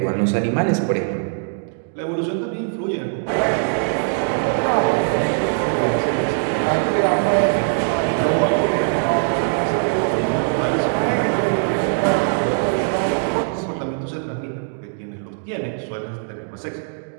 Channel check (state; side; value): silent; left; digital silence